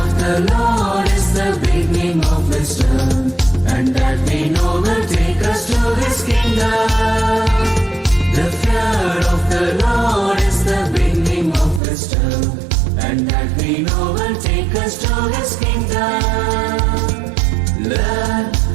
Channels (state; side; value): drops out; left; at 11.8 s